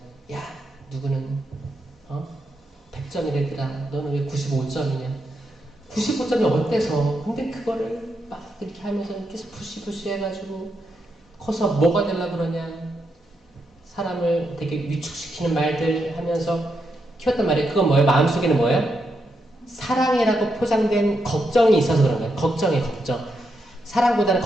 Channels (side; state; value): both; normal; correlation 0.83